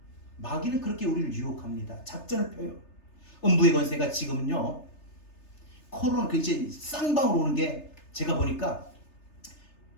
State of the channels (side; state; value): right; late; 3.3 ms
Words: 마귀는 그렇게 우리를 유혹합니다. 작전을 펴요. 음부의 권세가 지금은요, 코로나 그 이제 쌍방으로 오는 게, 제가 보니까